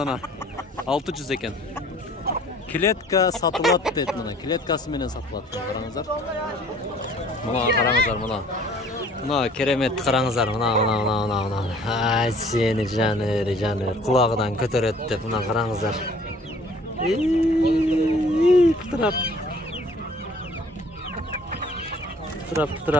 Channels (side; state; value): both; normal; correlation 0.54